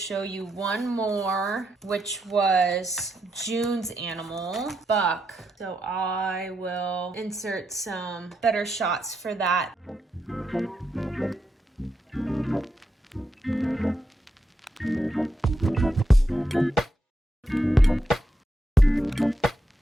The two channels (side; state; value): both; normal; correlation 0.83